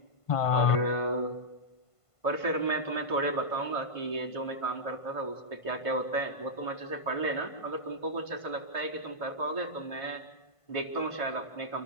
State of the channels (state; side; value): late; right; 1.5 ms